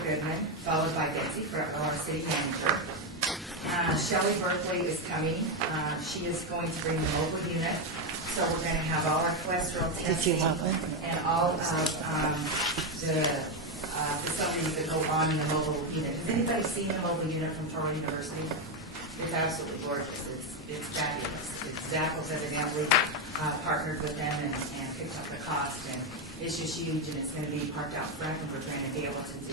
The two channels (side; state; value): both; normal; correlation 0.07